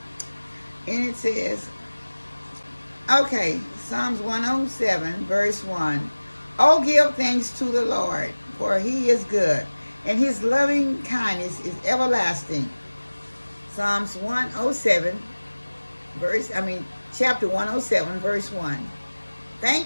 And it says, okay, Psalms 107, verse 1. Oh, give thanks to the Lord, for he is good, and his loving kindness is everlasting. Psalms 107, chapter 107, verse 1.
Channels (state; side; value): inverted; both; correlation -1.00